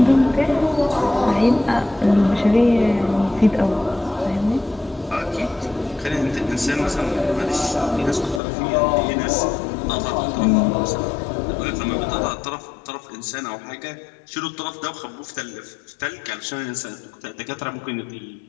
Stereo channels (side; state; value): right; drops out; at 8.4 s